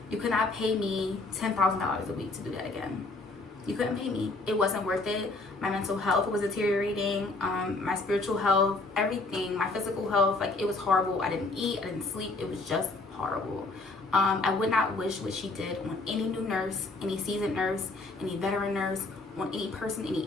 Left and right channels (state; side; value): quieter; right; 3.3 dB